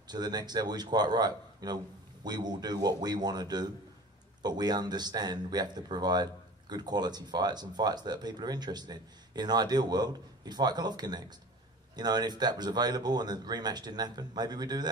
to the next level, he's quite right. You know, we will do what we want to do, but we understand we have to provide good quality fights and fights that people are interested in. In an ideal world, he'd fight Golovkin next. You know, and if that was available and the rematch didn't happen, maybe we'd do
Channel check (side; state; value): both; normal; correlation 0.40